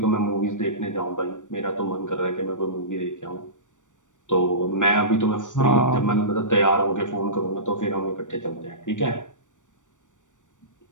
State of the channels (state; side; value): late; right; 0.86 ms